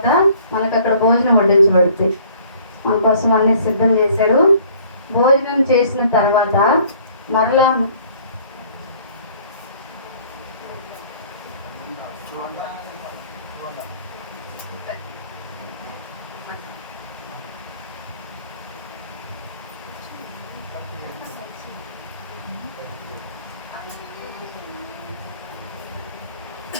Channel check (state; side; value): inverted; both; correlation -0.56